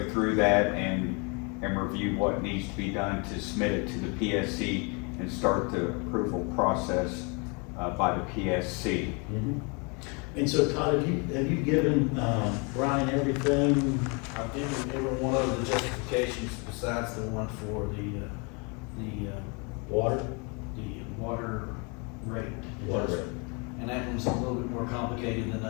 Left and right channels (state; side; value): quieter; right; 32.5 dB